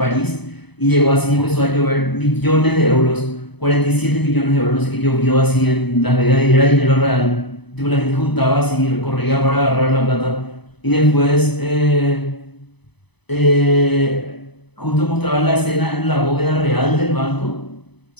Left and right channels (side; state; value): right; late; 0.99 ms